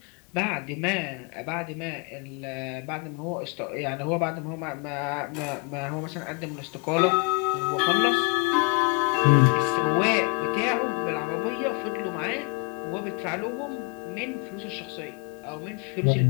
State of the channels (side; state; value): right; quieter; 30.8 dB